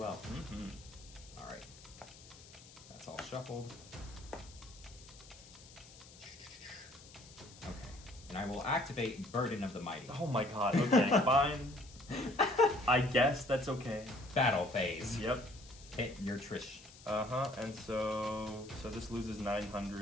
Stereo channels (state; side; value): noise; left; hiss, 20 dB below the sound